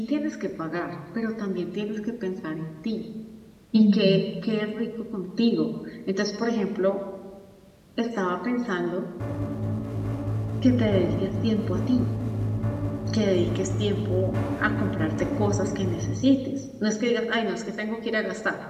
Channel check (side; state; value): both; identical; correlation 1.00